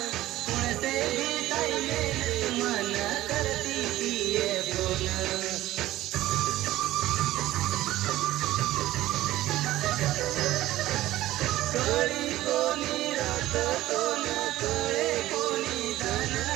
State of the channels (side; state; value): left; quieter; 15.7 dB